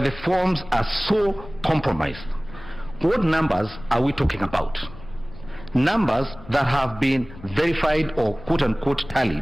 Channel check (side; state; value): left; noise; rumble, 17 dB below the sound